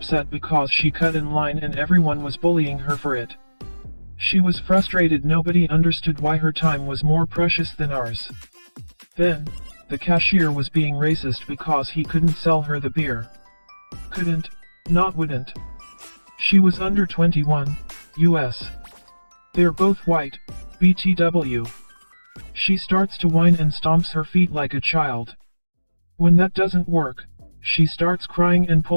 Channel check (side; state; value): both; inverted; correlation -1.00